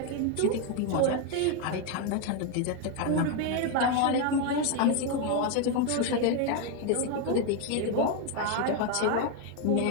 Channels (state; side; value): different; both; correlation 0.01